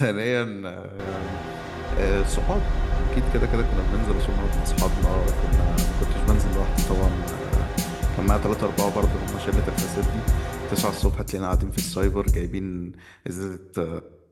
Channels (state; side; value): identical; both; correlation 1.00